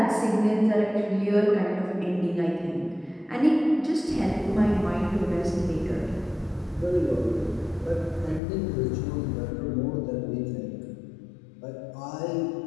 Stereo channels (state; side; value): drops out; right; at 8.4 s